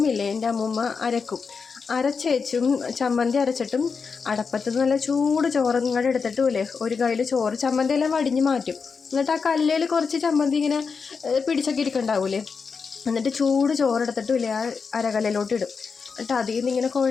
ഇല്ലേ, എൻ്റെ അമ്മൂമ്മ അരച്ചേച്ചും ചമ്മന്തി അരച്ചിട്ടും അടപ്പത്ത് നല്ല ചൂട് ചോറ് ഇങ്ങോട്ട് എടുത്തിട്ടുമില്ലേ ഒരു കയ്യിൽ ചോറ് ചമ്മന്തി എല്ലാം വടിഞ്ഞ് മാറ്റും. എന്നിട്ട് ആ കല്ലിൽ കുറച്ച് ചമ്മന്തി ഇങ്ങനെ പിടിച്ചൊക്കെ ഇരിക്കണ്ടാവൂലേ, എന്നിട്ട് ചൂട് ചോറെടുത്തിട്ടുമില്ലേ ആ അരകല്ലിലോട്ട് ഇടും. എന്നിട്ട് അതിൽ നിന്ന് ഇങ്ങനെ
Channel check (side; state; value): right; quieter; 5.3 dB